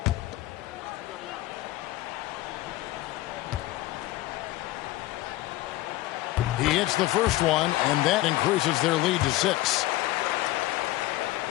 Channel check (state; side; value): quieter; right; 17.1 dB